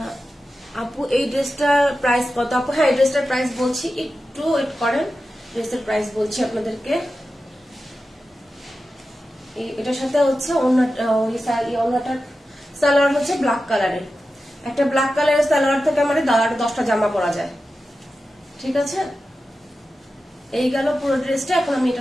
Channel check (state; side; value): normal; both; correlation 0.92